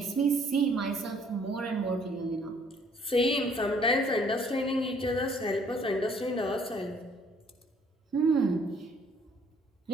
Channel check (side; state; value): both; normal; correlation 0.61